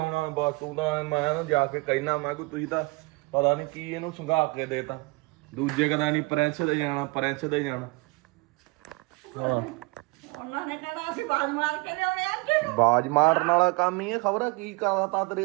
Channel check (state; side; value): quieter; left; 25.9 dB